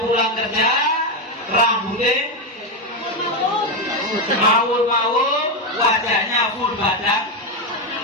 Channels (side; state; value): both; normal; correlation 0.08